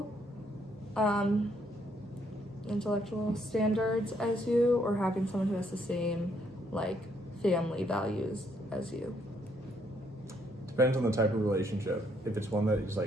standards as you, or having someone who has the same like family values as you? Depends on the type of relationship. If it's one that is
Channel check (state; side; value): normal; both; correlation 0.71